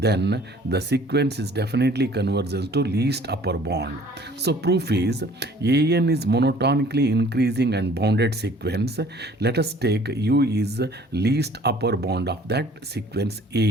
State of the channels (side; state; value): both; normal; correlation 0.53